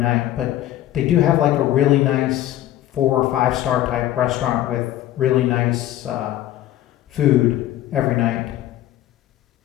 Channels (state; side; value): quieter; right; 13.4 dB